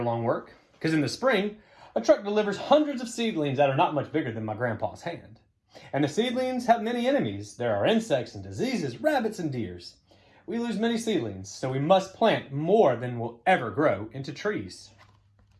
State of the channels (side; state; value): both; identical; correlation 1.00